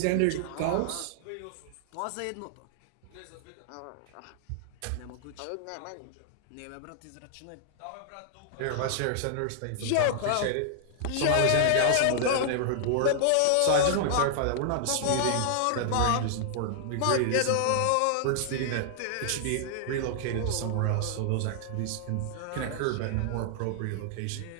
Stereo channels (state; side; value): different; both; correlation -0.01